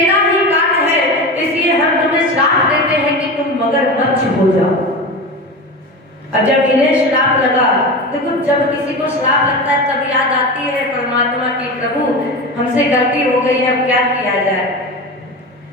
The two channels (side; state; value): both; normal; correlation 0.26